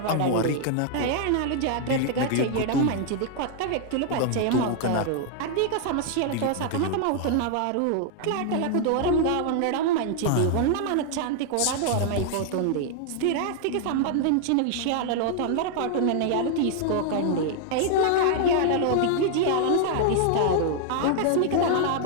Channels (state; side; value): different; both; correlation 0.00